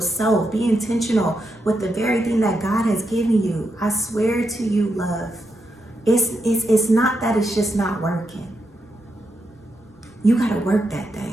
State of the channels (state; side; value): normal; both; correlation 0.83